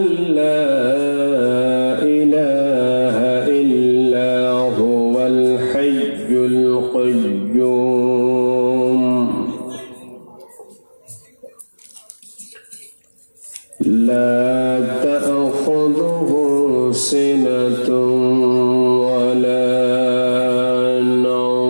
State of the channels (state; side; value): inverted; both; correlation -1.00